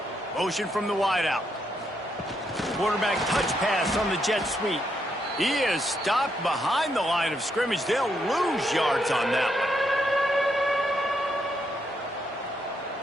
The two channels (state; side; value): normal; both; correlation 0.78